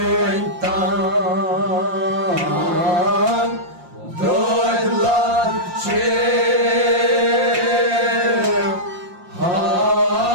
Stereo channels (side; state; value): left; late; 5.7 ms